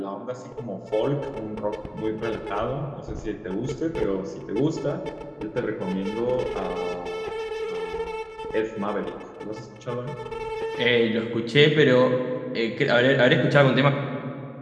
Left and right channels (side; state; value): both; identical; correlation 1.00